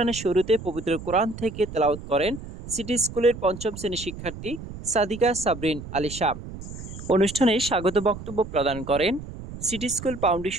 শুরুতে পবিত্র কোরআন থেকে তেলাওয়াত করেন সিটি স্কুলের পঞ্চম শ্রেণীর শিক্ষার্থী সাদিকা সাবরিন আলিশা। অনুষ্ঠানে স্বাগত বক্তব্য প্রদান করেন সিটি স্কুল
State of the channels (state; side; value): noise; right; rumble, 12 dB below the sound